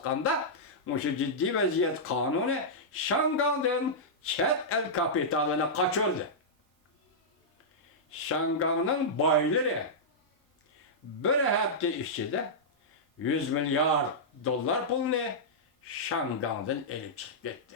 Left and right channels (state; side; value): normal; both; correlation -0.11